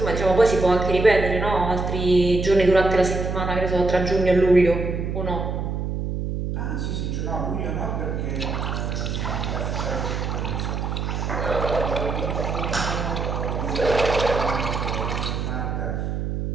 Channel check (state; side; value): noise; right; hum, 2 dB below the sound